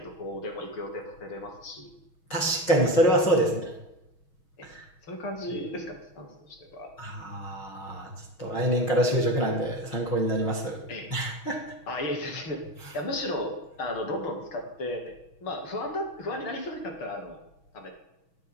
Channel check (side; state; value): right; late; 6.2 ms